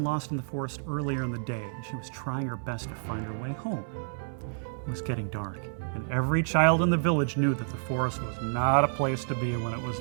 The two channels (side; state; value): left; silent; digital silence